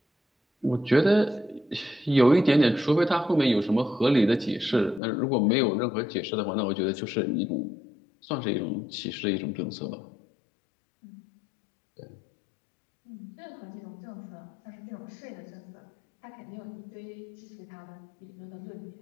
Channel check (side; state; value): right; drops out; at 5.0 s